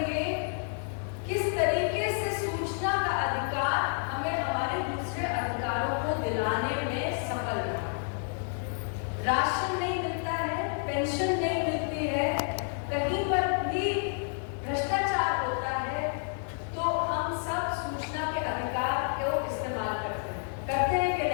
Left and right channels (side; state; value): right; silent; 58 dB below the other